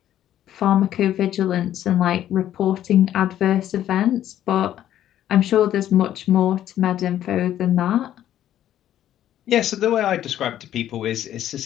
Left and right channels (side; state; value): right; quieter; 11.7 dB